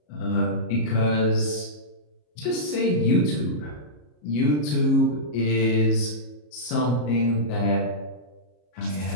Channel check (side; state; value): right; late; 33 ms